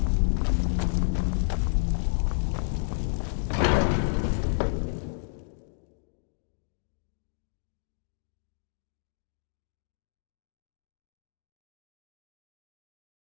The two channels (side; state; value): right; silent; digital silence